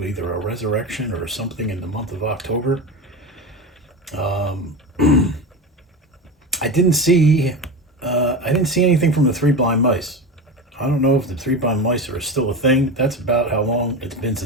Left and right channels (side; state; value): both; normal; correlation 0.23